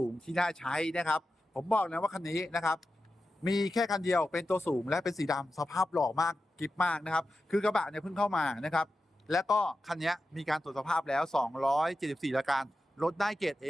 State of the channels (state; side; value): normal; both; correlation 0.91